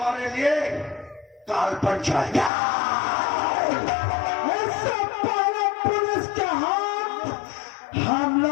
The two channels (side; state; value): right; drops out; at 2.5 s